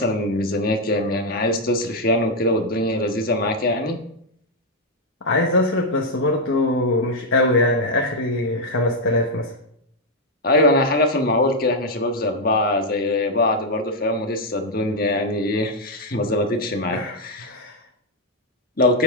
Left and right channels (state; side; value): normal; both; correlation 0.00